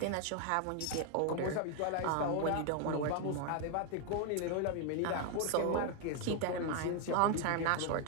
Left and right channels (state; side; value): different; both; correlation 0.01